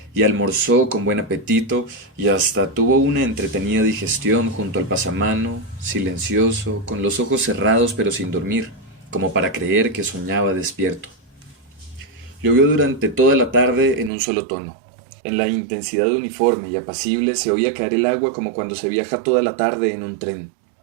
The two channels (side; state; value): left; drops out; at 14.1 s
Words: y almorzó con buen apetito, y hasta tuvo una entretenida digestión junto al pasamano, silencioso, con los ojos cerrados pero sin dormir, como para creer que soñaba despierto. Llovió durante toda la tarde en un solo tono. En la intensidad uniforme y apacible se oía caer el agua como cuando se viaja toda la tarde en un tren.